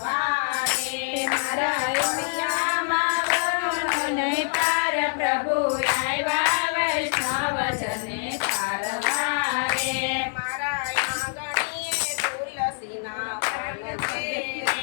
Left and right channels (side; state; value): right; silent; 55 dB below the other